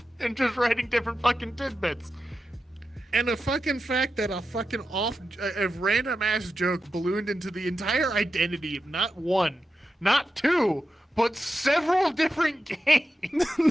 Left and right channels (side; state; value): both; normal; correlation 0.90